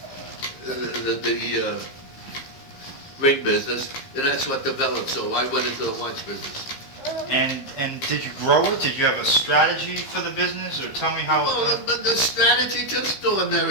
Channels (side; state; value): right; late; 15 ms